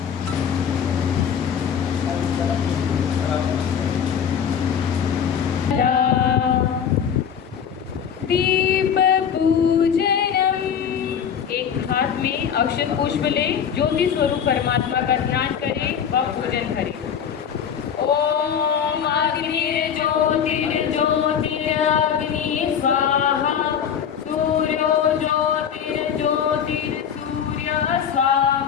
दीप पूजनम। एक हाथ में अक्षत पुष्प ले ज्योति स्वरूप परमात्मा का ध्यान करें व पूजन करें। ओम अग्निर्ज्योतिर्ज्योतिरग्नि स्वाहा सूर्यो ज्योतिर्ज्योतिर्सूर्य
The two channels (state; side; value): quieter; right; 7.9 dB